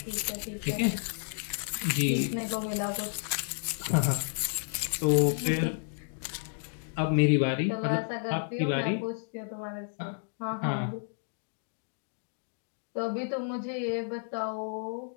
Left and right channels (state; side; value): silent; right; digital silence